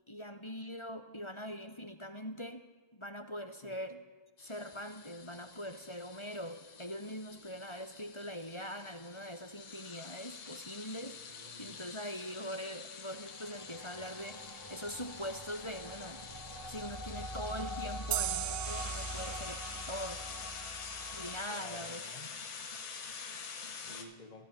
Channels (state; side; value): late; right; 1.4 ms